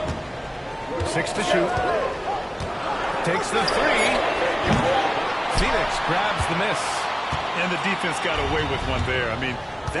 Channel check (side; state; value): both; identical; correlation 1.00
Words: 6 to shoot. Takes the 3. Phoenix grabs the miss. And the defense got away with one there. I mean,